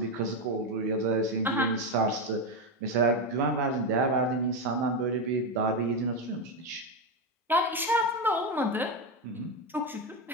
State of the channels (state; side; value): normal; both; correlation 0.11